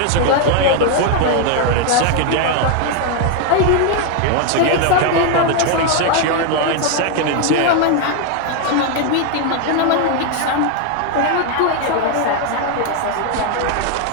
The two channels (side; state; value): both; different; correlation 0.01